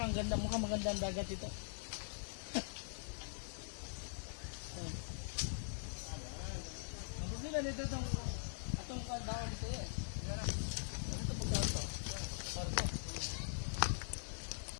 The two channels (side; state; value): right; silent; digital silence